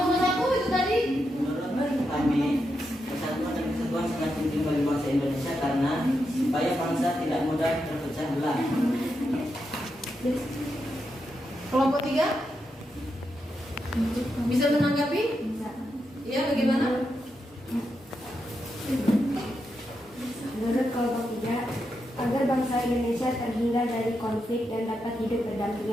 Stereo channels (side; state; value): both; normal; correlation 0.85